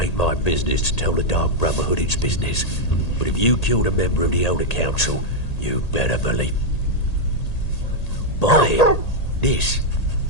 my business to tell the Dark Brotherhood its business, but if you killed a member of the Elder Council, you better believe... Buy it. This,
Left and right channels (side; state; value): right; late; 1.8 ms